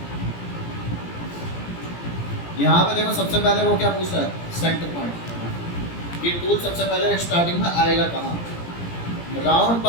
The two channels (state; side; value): late; right; 17 ms